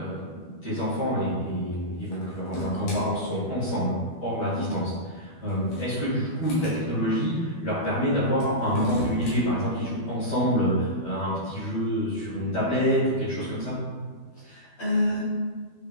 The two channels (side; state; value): right; late; 12 ms